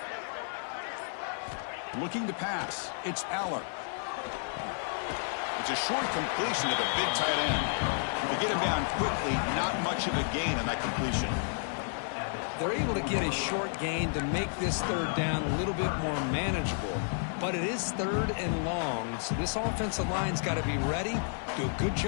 Looking to pass. It's Aller. It's a short completion to the big tight end. They get him down quickly. Not much of a gain on that completion. They're able to get a short gain to make this 3rd down a little bit more manageable. But it is 3rd and long, so this offensive line's got to be ready, do a good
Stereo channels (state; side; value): silent; right; 57 dB below the other